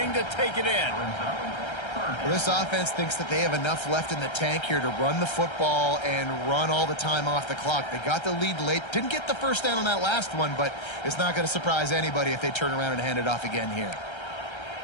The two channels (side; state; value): right; late; 1.3 ms